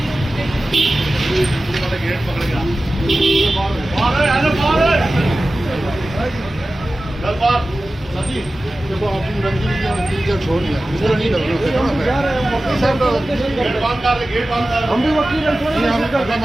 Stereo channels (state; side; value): normal; both; correlation 0.95